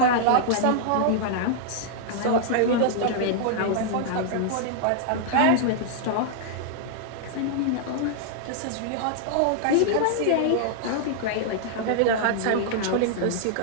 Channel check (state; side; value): different; both; correlation -0.01